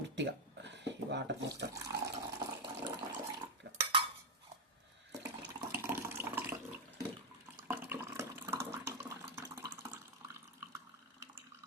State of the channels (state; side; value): normal; both; correlation 0.03